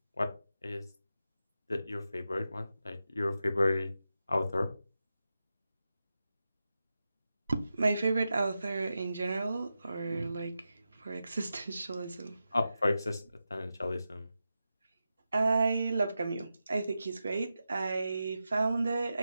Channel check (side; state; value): both; inverted; correlation -0.90